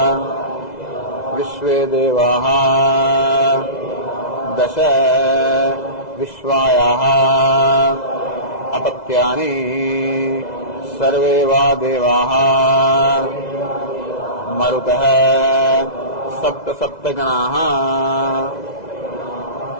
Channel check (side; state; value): right; late; 2.0 ms